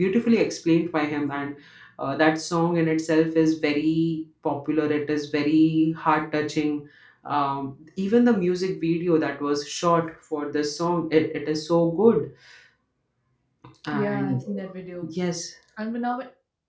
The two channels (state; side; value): identical; both; correlation 1.00